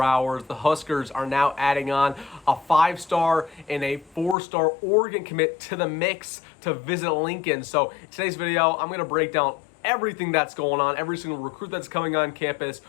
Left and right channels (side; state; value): right; drops out; at 4.4 s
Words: hours. The Huskers are now adding on a 5-star and a 4-star Oregon commit to the mix to visit Lincoln. So in today's video, I'm going to break down everything that's going on, every single recruit that's coming on campus,